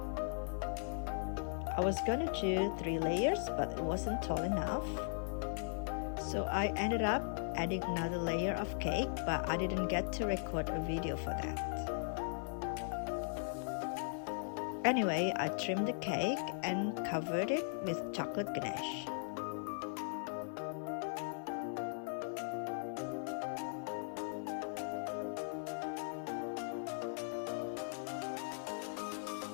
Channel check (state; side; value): silent; right; 52 dB below the other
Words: I was gonna do 3 layers, but it wasn't tall enough. So I ended up adding another layer of cake, but I didn't get to record a video for that. Anyway, I trimmed the cake and covered it with chocolate ganache.